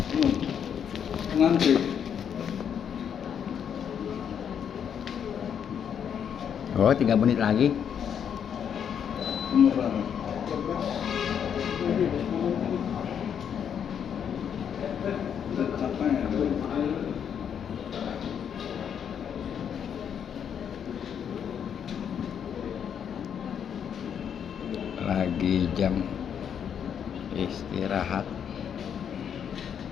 Ngantri. Oh, 3 menit lagi. Umur berapa? Capek ya? Lagi jam istirahat.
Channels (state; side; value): quieter; right; 8.2 dB